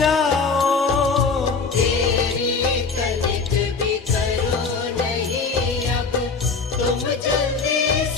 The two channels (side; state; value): right; quieter; 4.7 dB